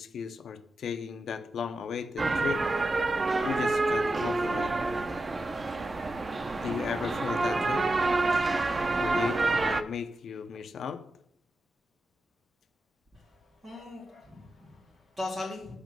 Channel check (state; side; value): normal; both; correlation 0.89